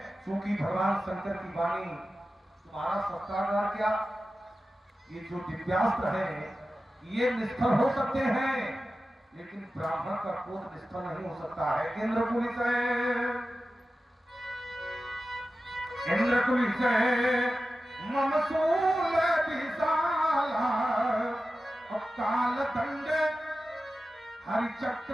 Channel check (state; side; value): normal; both; correlation 0.94